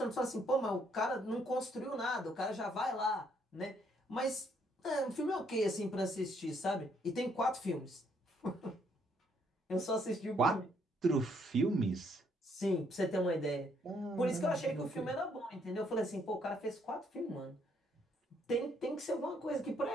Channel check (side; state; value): both; normal; correlation 0.70